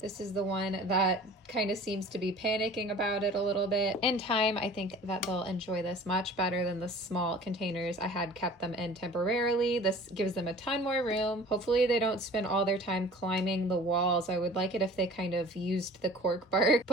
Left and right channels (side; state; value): both; normal; correlation 0.44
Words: This is the one that kind of seems to be panicking about it a little bit. In time, I think that they'll enjoy this much better than the small containers I had kept them in temporarily. This gives them a ton more room. Hopefully they don't spend all their time climbing the walls. I would like it if they kind of used the cork bark,